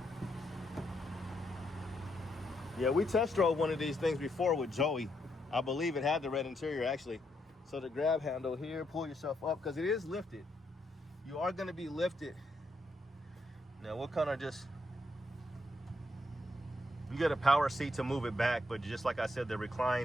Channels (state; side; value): normal; both; correlation 0.78